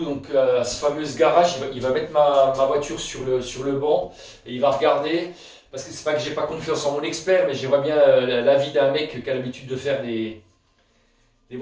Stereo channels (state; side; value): identical; both; correlation 1.00